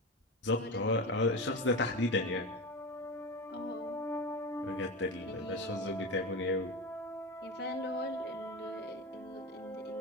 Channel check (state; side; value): normal; both; correlation 0.24